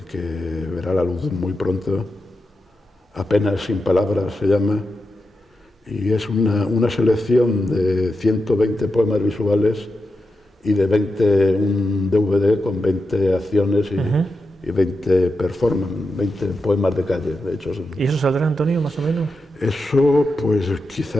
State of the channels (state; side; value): normal; both; correlation 0.88